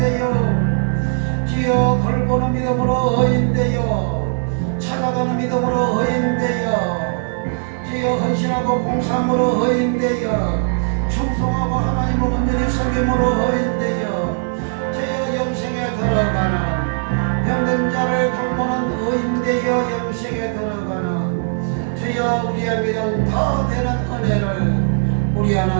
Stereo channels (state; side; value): silent; left; 58 dB below the other